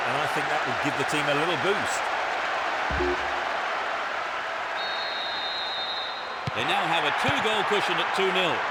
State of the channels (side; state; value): both; identical; correlation 1.00